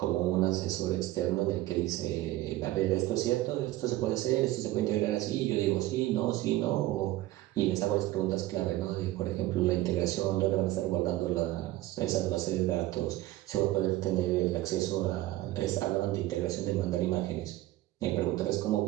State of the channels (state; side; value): quieter; left; 16.3 dB